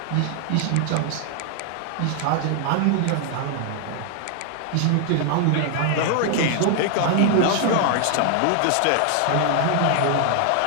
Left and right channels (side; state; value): both; different; correlation 0.00